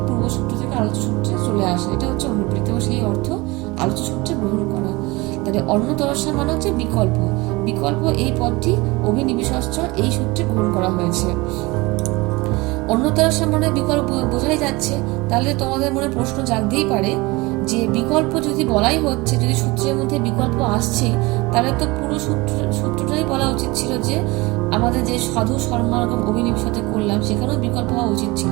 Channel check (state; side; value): quieter; left; 23.2 dB